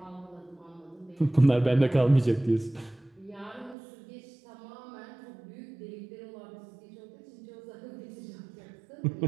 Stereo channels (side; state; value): left; drops out; at 3.8 s